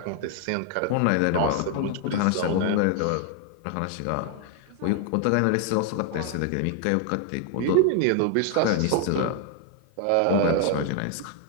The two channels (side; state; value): both; different; correlation 0.00